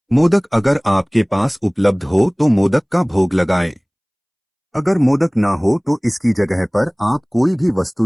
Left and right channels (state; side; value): identical; both; correlation 1.00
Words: मोदक अगर आपके पास उपलब्ध हो तो मोदक का भोग लगाएं। अगर मोदक ना हो तो इसकी जगह पर आप कोई भी